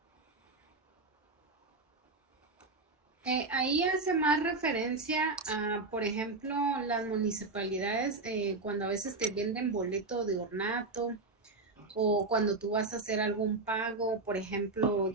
Ahí hace más referencia a, por ejemplo, las municipalidades cuando a veces te venden boleto de ornato o cuando tú vas a hacer algún pago, por ejemplo,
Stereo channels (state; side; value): quieter; left; 3.5 dB